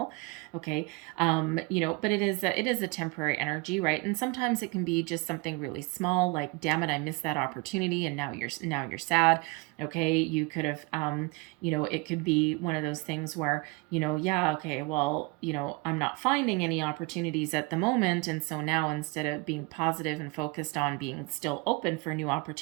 Okay, but it is a temporary energy, right? And sometimes it can be just something really small, like, damn it, I missed that opportunity, and now you're sad. Okay, you could have, it could be one of those things where, yeah, okay, well, I'm not finding any opportunities at the moment, and so now instead of being positive and focused on being still open for new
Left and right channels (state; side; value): quieter; left; 26.6 dB